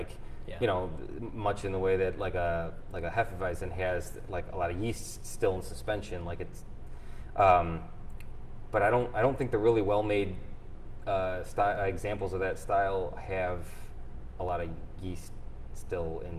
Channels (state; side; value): identical; both; correlation 1.00